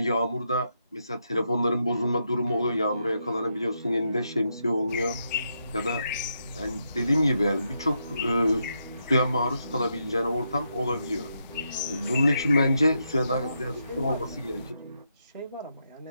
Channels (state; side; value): inverted; both; correlation -0.82